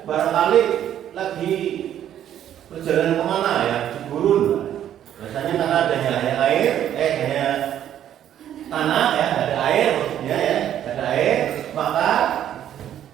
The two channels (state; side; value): quieter; left; 10.8 dB